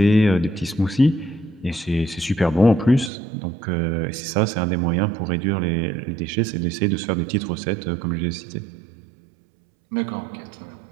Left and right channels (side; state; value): left; drops out; at 3.1 s